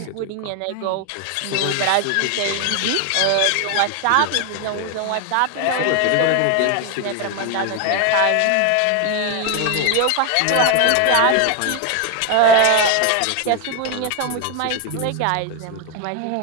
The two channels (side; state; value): both; different; correlation 0.01